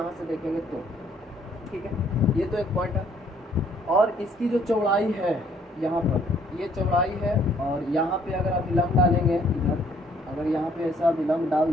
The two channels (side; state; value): both; normal; correlation 0.63